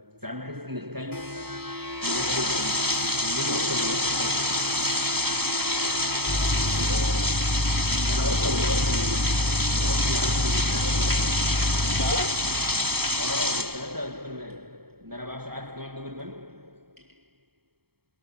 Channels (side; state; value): left; late; 0.96 ms